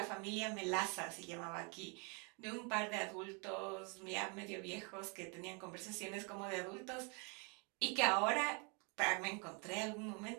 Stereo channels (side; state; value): left; quieter; 34.0 dB